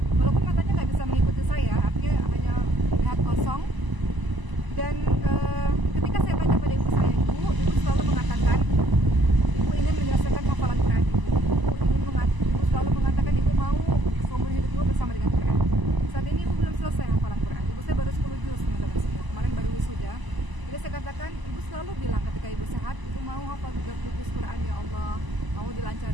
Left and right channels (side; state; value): left; late; 1.0 ms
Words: Walaupun matanya nggak bisa mengikuti saya, artinya hanya lihat kosong. Dan ketika saya tanya pada ibu saya, ibu selalu mengatakan ibu ingin menyelesaikan hafalan Quran. Ibu selalu mengatakan ibu mau seumur hidup ibu bersama dengan Quran. Saat ini ibu belum selesai hafalan Quran. Ibu saya baru 10 juz, teman-teman semua. Kemarin baru wisuda. Jadi saya katakan ibu selalu bilang ketika ibu sehat, ibu mau hafal 30 juz Quran, ya Allah, mau